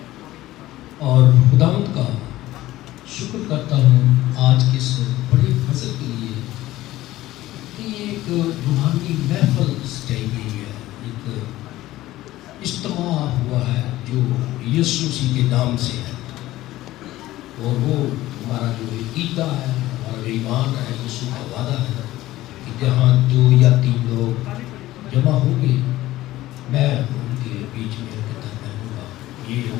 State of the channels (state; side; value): quieter; right; 16.1 dB